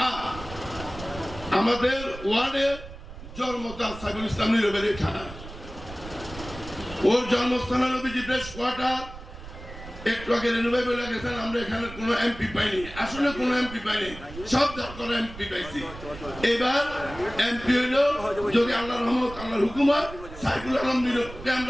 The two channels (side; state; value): right; noise; rumble, 14 dB below the sound